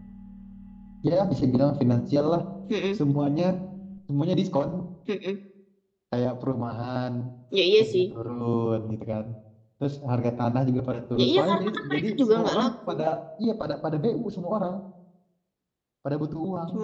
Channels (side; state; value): both; identical; correlation 1.00